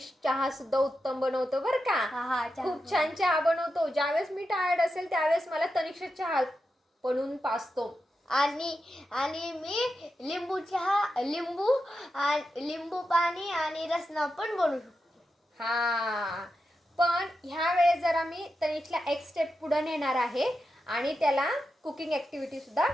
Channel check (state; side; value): normal; both; correlation 0.88